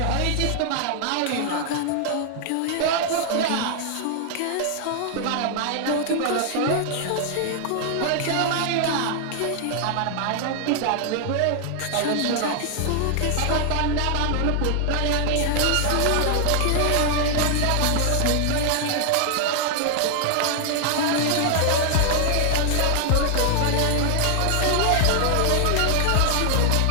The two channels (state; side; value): different; both; correlation 0.00